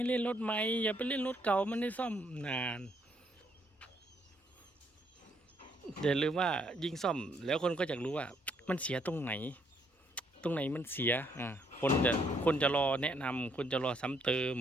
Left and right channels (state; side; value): normal; both; correlation 0.70